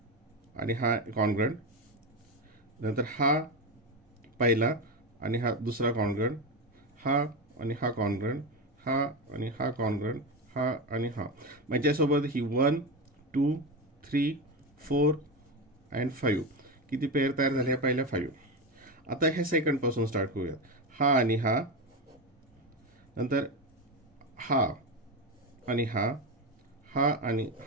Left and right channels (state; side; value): normal; both; correlation 0.16